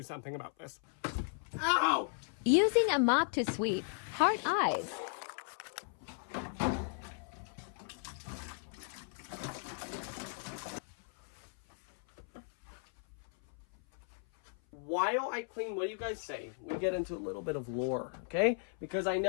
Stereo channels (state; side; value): silent; right; 54 dB below the other